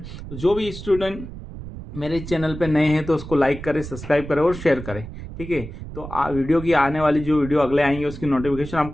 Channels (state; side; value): noise; right; rumble, 11 dB below the sound